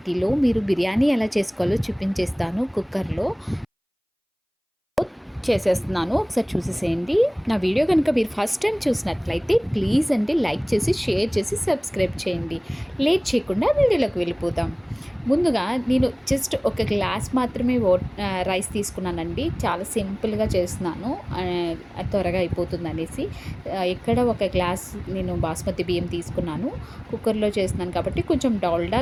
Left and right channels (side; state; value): both; identical; correlation 1.00